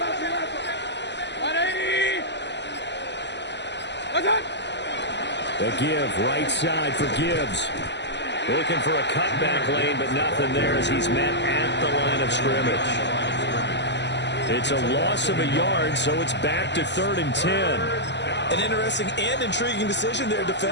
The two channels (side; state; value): right; late; 0.51 ms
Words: The give, right side for Gibbs. Looking for a cutback lane, but nothing there as he's met at the line of scrimmage. It's a loss of a yard, so it's back to 3rd and 10. An interesting and intriguing decision there